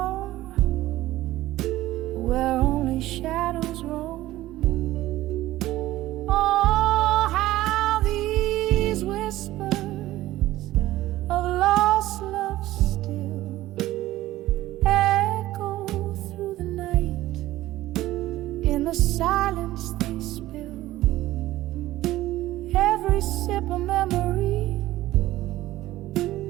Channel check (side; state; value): left; quieter; 15.9 dB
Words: where only shadows roam. Oh, how these whispers of lost love still echo through the night. In the silence they spill every sip of memory